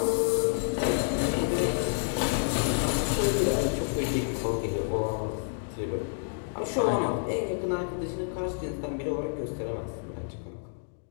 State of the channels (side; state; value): right; silent; digital silence